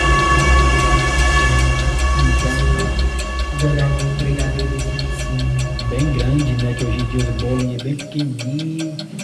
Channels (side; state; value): both; identical; correlation 1.00